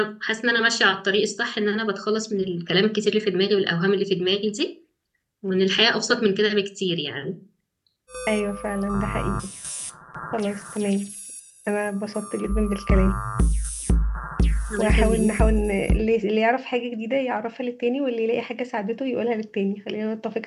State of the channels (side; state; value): both; identical; correlation 1.00